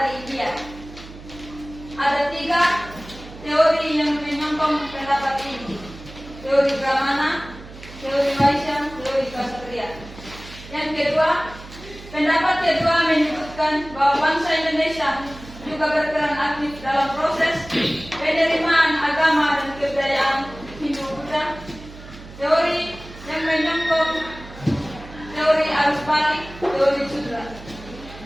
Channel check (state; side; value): noise; right; hum, 16 dB below the sound